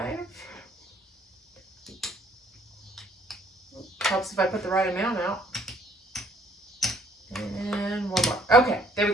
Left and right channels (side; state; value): both; normal; correlation 0.62